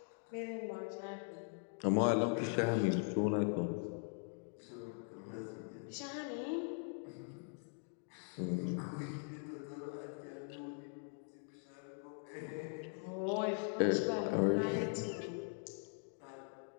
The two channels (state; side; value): silent; right; 50 dB below the other